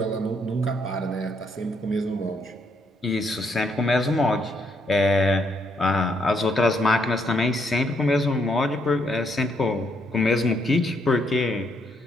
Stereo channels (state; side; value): normal; both; correlation 0.74